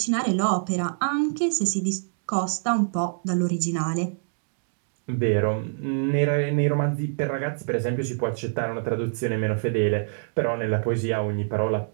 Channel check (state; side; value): silent; left; digital silence